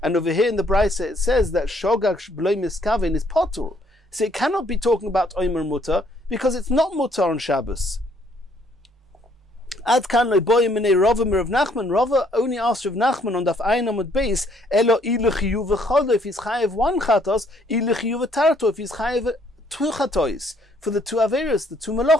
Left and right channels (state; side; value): normal; both; correlation 0.66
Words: And over here in the Brisa it says that shogag b'loi miskavin is potter. So it cannot be talking about Omer Mutter because it's not Mutter on Shabbos. Ad kan lo'boyim minei Rava mir Rav Nachman. Rava only asked Rav Nachman on Daf Ayin Amud Beis, Elo ilu chiyuv v'cholo, if he's chayev one chatos, ilu chiyuv v'tarto, if he's chayev two chatois, for the two averos, the two